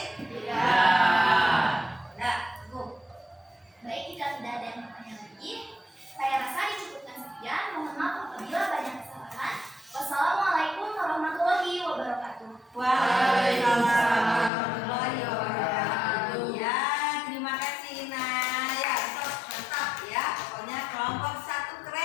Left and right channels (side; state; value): right; drops out; at 14.5 s